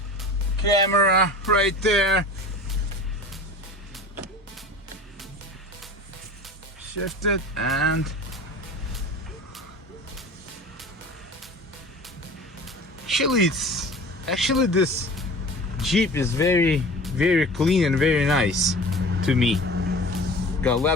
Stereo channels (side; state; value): both; normal; correlation 0.39